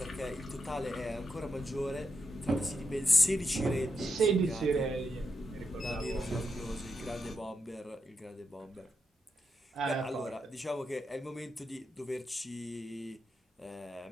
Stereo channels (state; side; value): normal; both; correlation 0.84